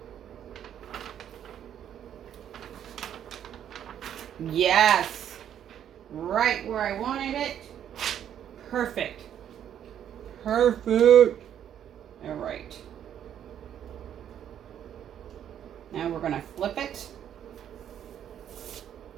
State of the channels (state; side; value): quieter; left; 9.9 dB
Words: Yes. Right where I wanted it. Perfect. Perfect. All right. Now we're going to flip it.